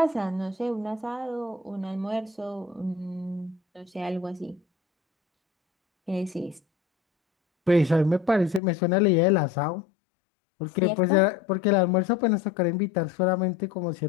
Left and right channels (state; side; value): drops out; right; at 8.6 s